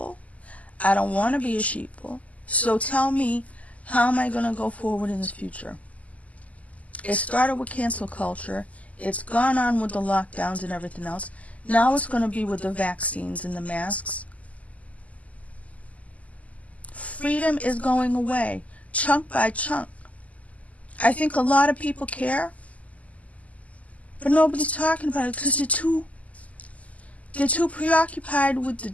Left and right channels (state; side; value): late; right; 0.072 ms